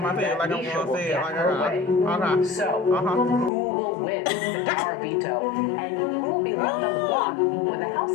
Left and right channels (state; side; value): drops out; right; at 3.5 s